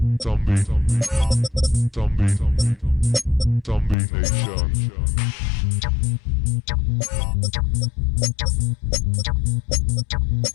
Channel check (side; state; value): right; drops out; at 4.0 s